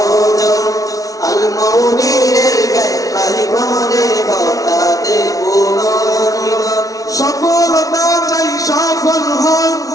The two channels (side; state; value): right; late; 0.17 ms